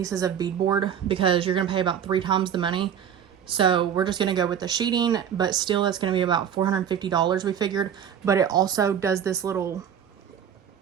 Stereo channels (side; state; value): left; quieter; 8.8 dB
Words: of beadboard because you're going to pay about 3 times the money. So we're just going to go with the sheeting, but still that's going to be about $450 we figured. But it also does this little